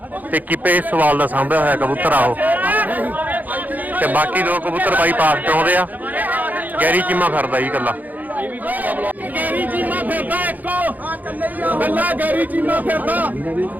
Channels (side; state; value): left; late; 0.082 ms